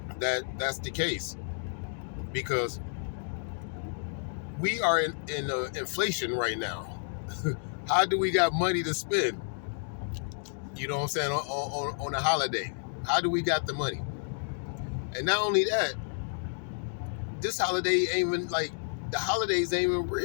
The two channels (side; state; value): right; silent; digital silence